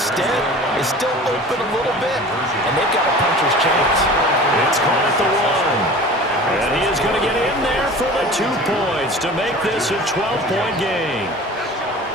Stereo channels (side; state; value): both; normal; correlation 0.40